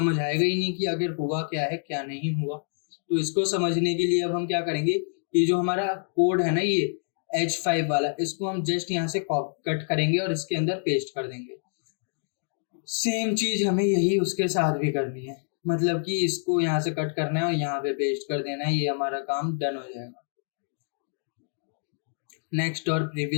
आएगा ही नहीं कि आखिर हुआ क्या है क्या नहीं हुआ। तो इसको समझने के लिए अब हम क्या करेंगे, ये जो हमारा कोड है ना, ये H5 वाला, इसको हम जस्ट यहाँ से कट करेंगे और इसके अंदर पेस्ट कर देंगे। सेम चीज हमें यही उसके साथ भी करनी है, मतलब कि इसको यहाँ से कट करना है और यहाँ पे पेस्ट कर देना है, ये हमारा काम डन हो जाएगा। नेक्स्ट और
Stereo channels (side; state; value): right; silent; digital silence